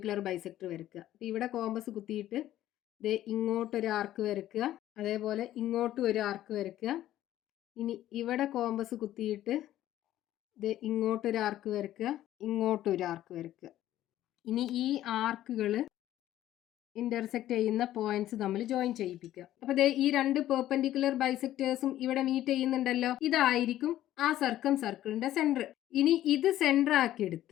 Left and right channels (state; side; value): quieter; right; 13.3 dB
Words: ബൈസെക്ടർ വരയ്ക്കുക. ഇവിടെ കോമ്പസ് കുത്തിയിട്ട് ഇങ്ങോട്ടൊരു ആർക്ക് വരയ്ക്കുക. അതേപോലെ ഇങ്ങോട്ടും ഒരു ആർക്ക് വരയ്ക്കുക. ഇനി ഇവിടെ കോമ്പസ് കുത്തിയിട്ട് ഇങ്ങോട്ടൊരു ആർക്ക് വരയ്ക്കുക, ഇങ്ങോട്ടൊരു ആർക്ക് വരയ്ക്കുക. ഇനി ഈ ആർക്കുകൾ ഇന്റർസെക്ട് ചെയ്യുന്ന പോയിന്റ്സ് തമ്മിൽ ജോയിൻ ചെയ്യിപ്പിക്കുക. അപ്പൊ ഈ 2 പെർപെൻഡിക്കുലർ ബൈസെക്ടേഴ്സും ഇവിടെ മീറ്റ് ചെയ്യുന്നുണ്ടല്ലോ. ഇതായിരിക്കും ആ സർക്കം സർക്കിളിന്റെ സെന്റർ. ഇനി ഇത് സെന്റർ